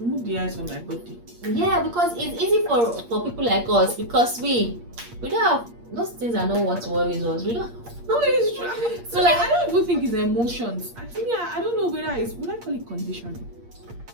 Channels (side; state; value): left; late; 8.5 ms